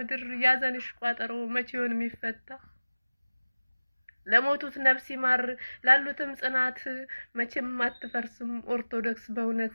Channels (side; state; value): both; inverted; correlation -0.98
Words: ያዘንሽ ቋጠሮ መቼውን የሚፈታ። ለሞቱት ነፍስ ይማር ላሉትም ጽናት መቼም አትፈርስም ኦርቶዶክስ በእውነት